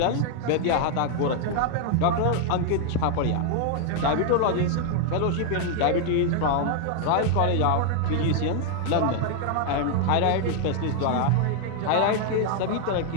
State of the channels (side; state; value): both; different; correlation 0.00